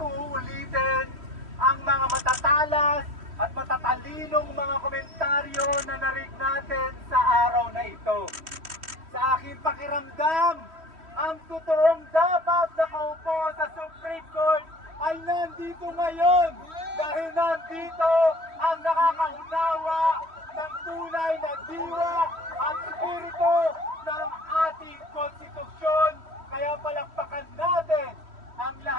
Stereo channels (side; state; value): left; late; 3.1 ms